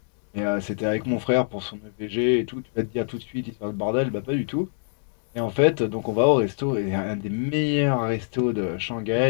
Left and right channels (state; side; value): silent; right; digital silence